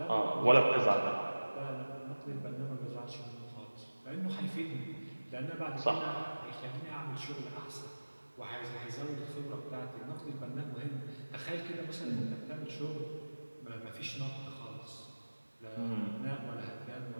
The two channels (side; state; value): both; inverted; correlation -1.00